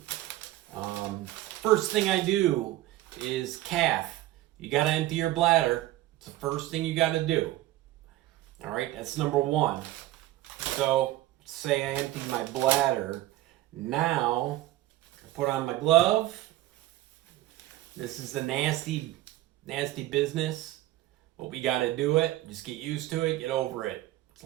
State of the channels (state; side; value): quieter; left; 15.8 dB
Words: First thing I do is cath. You got to empty your bladder. It's the first thing you got to do. All right, that's number one. So say I emptied my bladder. Now I put on my glove. This is the nasty business. But we got to do it. Just get used to it. Get over it. It's